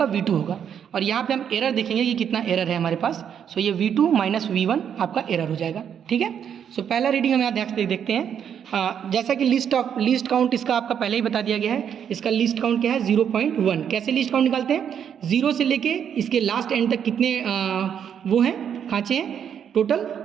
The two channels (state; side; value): quieter; left; 8.4 dB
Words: V2 होगा। और यहाँ पे हम एरर देखेंगे कि कितना एरर है हमारे पास। सो ये V2 माइनस V1 आपका एरर हो जाएगा। ठीक है, सो पहला रीडिंग हम यहाँ देखते हैं। जैसा कि लीस्ट काउंट इसका आपका पहले ही बता दिया गया है। इसका लीस्ट काउंट क्या है 0.1। कैसे लीस्ट काउंट निकालते हैं, 0 से लेके इसके लास्ट एंड तक कितने वो हैं, खाँचे हैं टोटल।